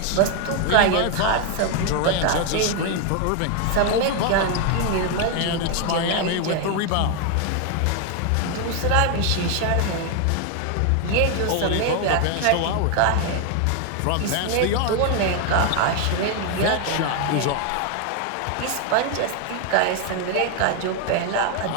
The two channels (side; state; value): both; different; correlation 0.01